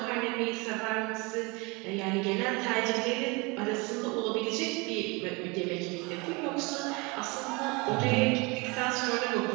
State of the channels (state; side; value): quieter; left; 27.5 dB